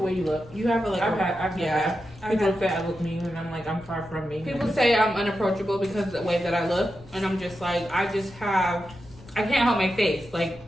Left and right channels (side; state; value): left; noise; rumble, 21 dB below the sound